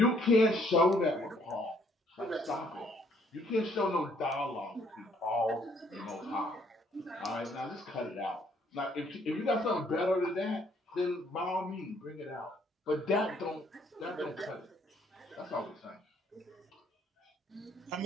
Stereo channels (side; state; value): both; normal; correlation 0.65